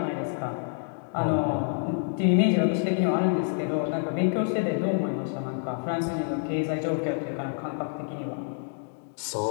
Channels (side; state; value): right; silent; digital silence